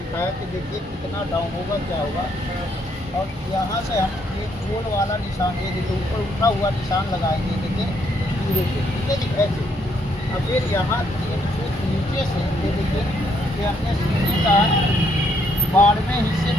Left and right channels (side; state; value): both; normal; correlation 0.72